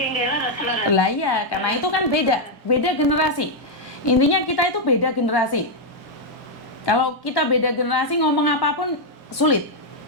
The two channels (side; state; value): both; normal; correlation -0.01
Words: Lah iya, karena itu kan beda generasi. Intinya kita itu beda generasi. Kalau kita beda generasi, ngomong apapun sulit.